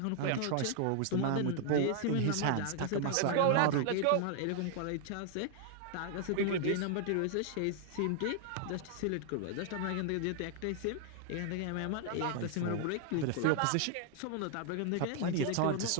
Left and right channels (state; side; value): different; both; correlation 0.00